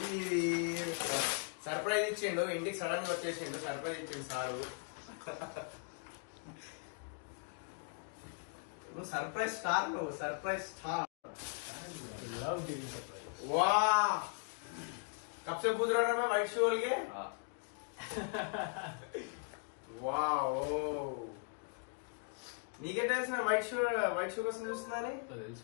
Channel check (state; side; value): silent; right; 52 dB below the other